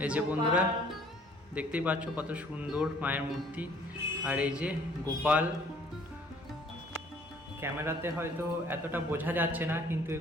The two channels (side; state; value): both; normal; correlation 0.57